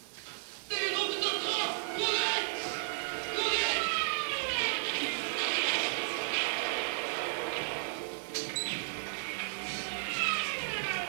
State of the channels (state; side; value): silent; left; digital silence